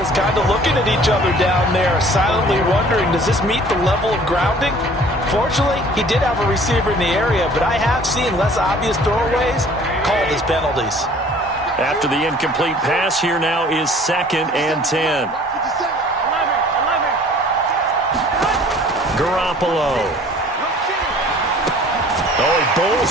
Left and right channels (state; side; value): normal; both; correlation 0.51